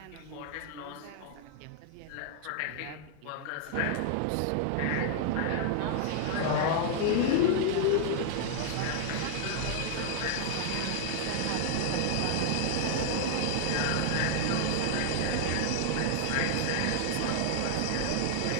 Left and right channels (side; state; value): both; different; correlation 0.00